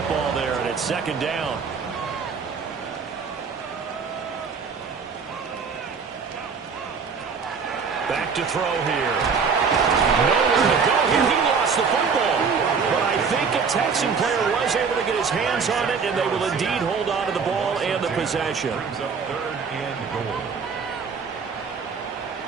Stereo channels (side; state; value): left; quieter; 5.6 dB